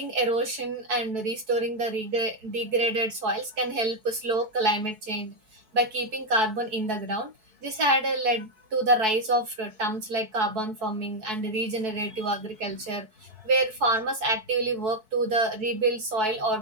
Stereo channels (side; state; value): left; late; 4.6 ms